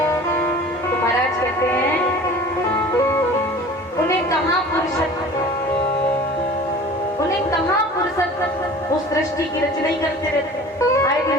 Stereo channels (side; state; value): both; normal; correlation 0.42